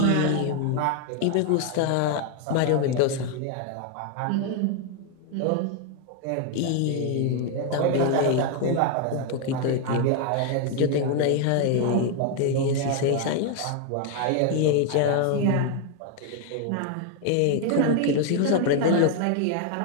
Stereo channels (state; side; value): different; both; correlation 0.01